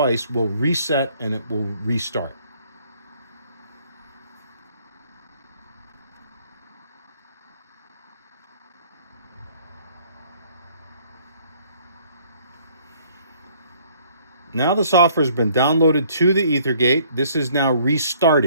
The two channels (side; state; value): both; inverted; correlation -0.60